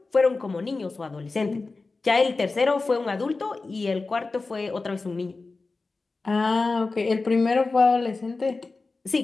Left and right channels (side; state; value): right; quieter; 3.7 dB